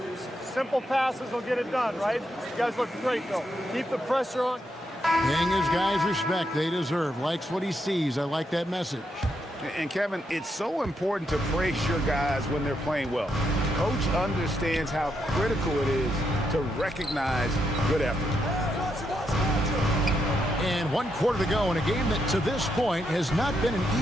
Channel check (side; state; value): both; normal; correlation 0.80